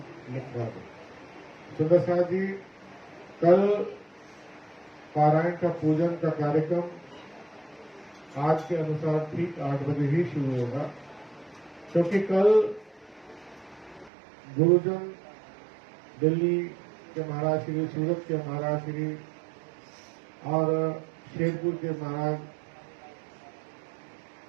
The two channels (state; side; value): drops out; left; at 14.1 s